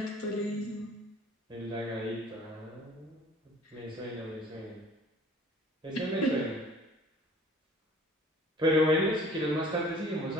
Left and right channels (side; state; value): both; normal; correlation 0.51